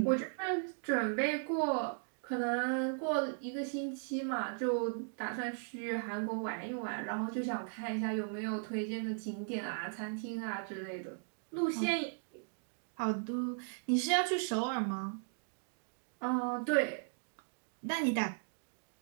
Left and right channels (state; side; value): silent; left; digital silence